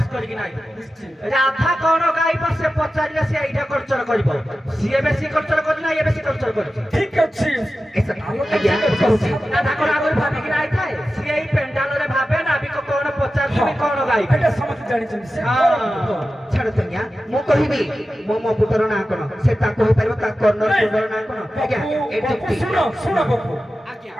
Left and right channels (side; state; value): both; normal; correlation 0.93